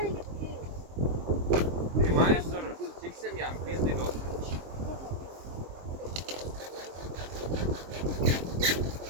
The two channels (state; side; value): late; left; 23 ms